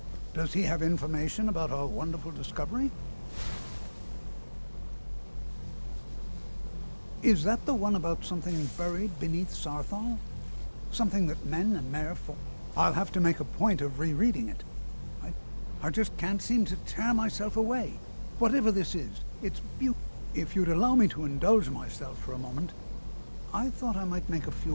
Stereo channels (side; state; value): both; inverted; correlation -1.00